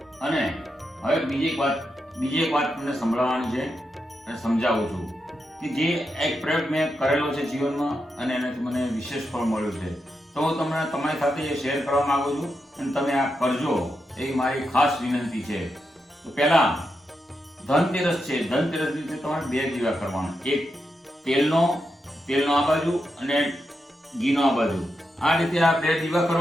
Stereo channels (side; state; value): both; normal; correlation 0.86